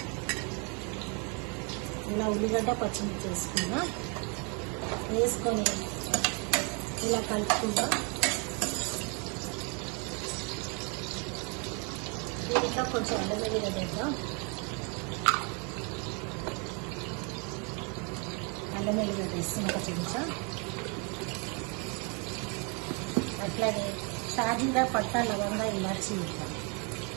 ఇలా ఉల్లిగడ్డ పచ్చిమిర్చి వేసుకున్నాం. వేసుకొని ఇలా కలుపుకుందాం. దీంట్లో కొంచెం అల్లం వెల్లిగడ్డ వేద్దాం. అల్లం వెల్లిగడ్డ వేస్తాం ఒక చెంచా. అట్లాగే షాజీరా పట్టా లవంగా ఇలాచి వేద్దాం.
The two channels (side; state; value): left; quieter; 34.9 dB